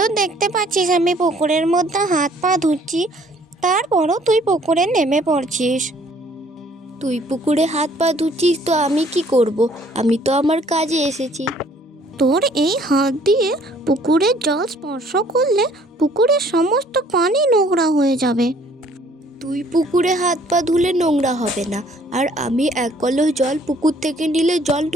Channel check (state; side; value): normal; both; correlation 0.59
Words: দেখতে পাচ্ছিস আমি পুকুরের মধ্যে হাত পা ধুচ্ছি, তারপরও তুই পুকুরে নেমে পড়ছিস। তুই পুকুরে হাত পা ধুচ্ছিস তো আমি কি করব? আমি তো আমার কাজে এসেছি। তোর এই হাত দিয়ে পুকুরের জল স্পর্শ করলে পুকুরের সমস্ত পানি নোংরা হয়ে যাবে। তুই পুকুরে হাত পা ধুলে নোংরা হবে না, আর আমি এক কলস জল পুকুর থেকে নিলে জল